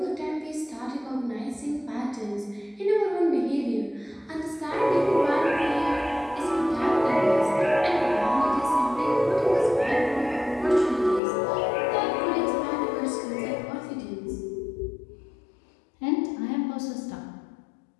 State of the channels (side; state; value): right; drops out; at 11.2 s